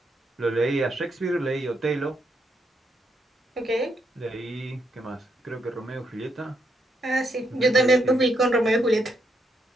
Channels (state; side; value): normal; both; correlation 0.78